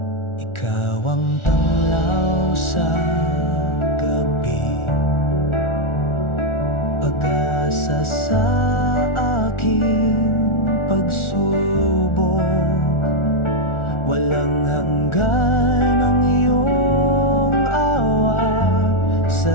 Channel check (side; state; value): right; late; 1.4 ms